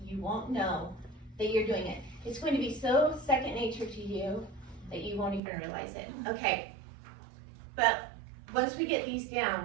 You won't know that you're doing it. It's going to be so second nature to you that you won't even realize it. Okay, but once we get these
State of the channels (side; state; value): left; drops out; at 5.4 s